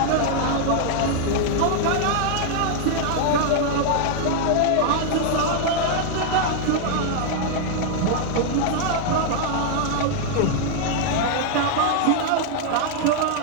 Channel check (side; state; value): both; different; correlation 0.00